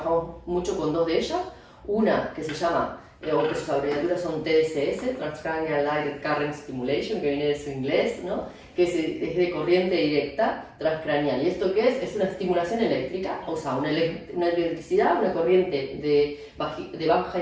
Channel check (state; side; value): identical; both; correlation 1.00